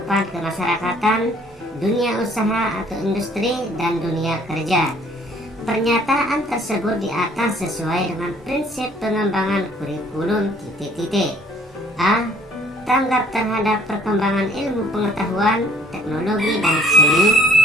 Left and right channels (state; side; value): normal; both; correlation 0.58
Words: kemasyarakatan, dunia usaha atau industri, dan dunia kerja. Pernyataan tersebut di atas sesuai dengan prinsip pengembangan kurikulum A. Tanggap terhadap perkembangan ilmu pengetahuan, teknologi, dan seni.